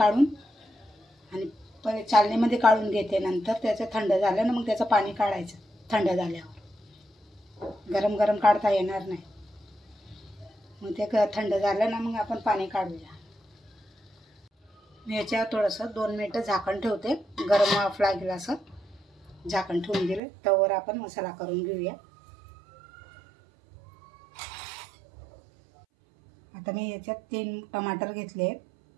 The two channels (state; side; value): drops out; left; at 20.2 s